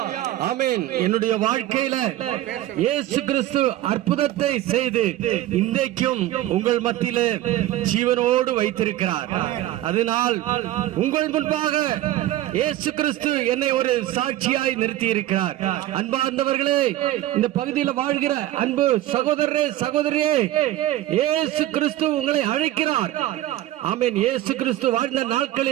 ஆமென். என்னுடைய வாழ்க்கையில இயேசு கிறிஸ்து அற்புதத்தை செய்து இன்றைக்கும் உங்கள் மத்தியிலே ஜீவனோடு வைத்திருக்கிறார். அதனால் உங்கள் முன்பாக இயேசு கிறிஸ்து என்னை ஒரு சாட்சியாய் நிறுத்தி இருக்கிறார். அன்பார்ந்தவர்களே, இந்த பகுதியில் வாழ்கிற அன்பு சகோதரரே, சகோதரியே, இயேசு கிறிஸ்து உங்களை அழைக்கிறார். ஆமென். இயேசு கிறிஸ்து வாழ்ந்த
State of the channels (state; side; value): quieter; left; 14.6 dB